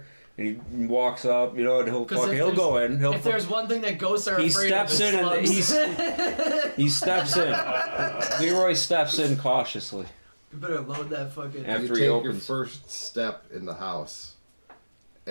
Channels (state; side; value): inverted; both; correlation -1.00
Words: and he walks up, you know, and he'll 'Cause if he'll go in. He'll If there's one thing that ghosts are he afraid steps of, in and it's he steps in. Leroy steps in cautiously You better load that fucking. after You he take your opens. first step in the house,